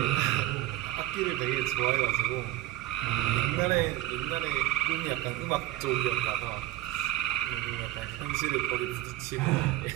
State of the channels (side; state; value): left; quieter; 15.5 dB